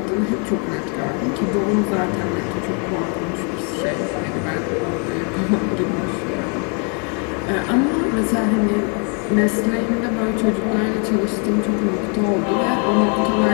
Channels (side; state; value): right; quieter; 37.7 dB